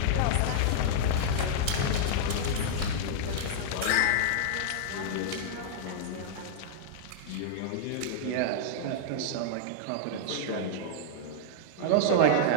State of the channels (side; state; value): both; different; correlation -0.02